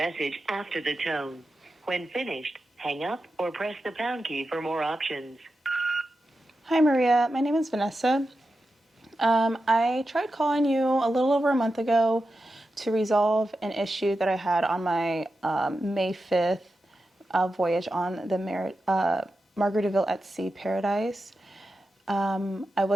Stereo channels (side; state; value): both; normal; correlation 0.90